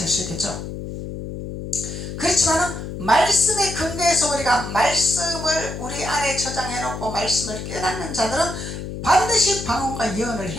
수 있겠죠. 그렇지만 말씀의 근거에서 우리가 말씀을 우리 안에 저장해 놓고 말씀을 깨닫는 자들은 반드시 방언과 예언을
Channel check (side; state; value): left; noise; hum, 8 dB below the sound